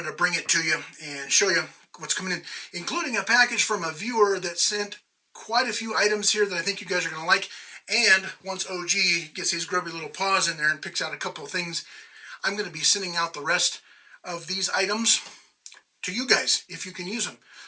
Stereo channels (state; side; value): identical; both; correlation 1.00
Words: to bring it to you and show you what's coming in, including a package from a viewer that sent quite a few items here that I think you guys are going to like. And once OG gets his grubby little paws in there and picks out a couple of things, I'm going to be sending out the rest of these items to you guys if you can use them.